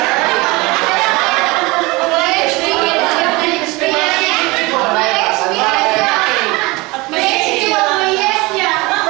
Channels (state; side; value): quieter; left; 23.7 dB